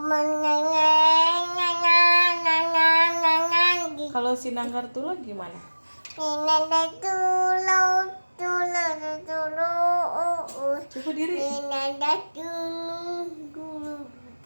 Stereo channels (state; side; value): inverted; both; correlation -1.00